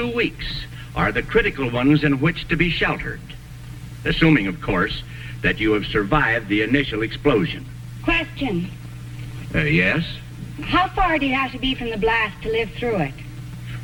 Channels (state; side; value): identical; both; correlation 1.00